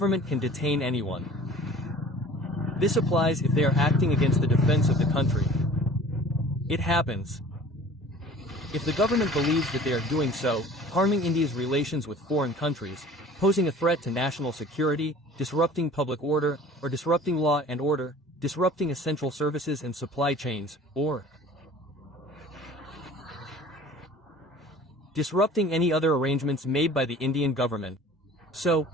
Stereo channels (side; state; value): both; normal; correlation 0.46